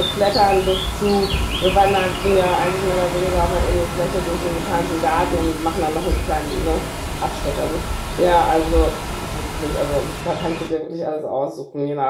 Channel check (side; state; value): both; identical; correlation 1.00